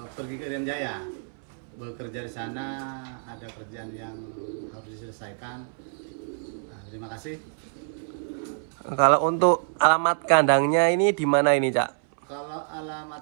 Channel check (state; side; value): silent; left; 60 dB below the other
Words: pergi ke Irian Jaya, bekerja di sana, ada kerjaan yang harus diselesaikan. Terima kasih. Kalau untuk alamat kandangnya ini di mana ini Cak? Kalau